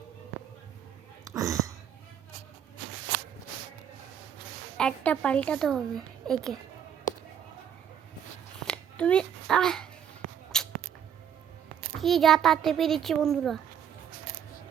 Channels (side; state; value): left; quieter; 8.9 dB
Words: একটা পাল্টাতে হবে একে। তুমি কি যা তা টেপে দিচ্ছি বন্ধুরা।